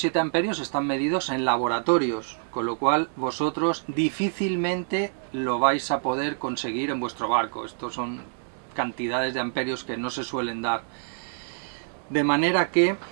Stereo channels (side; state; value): left; silent; 61 dB below the other